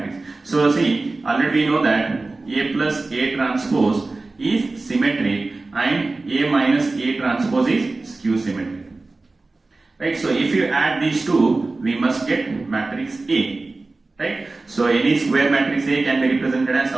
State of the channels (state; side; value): quieter; left; 3.4 dB